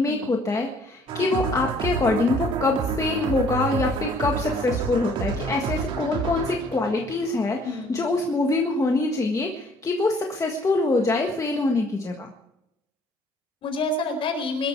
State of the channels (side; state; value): both; normal; correlation 0.59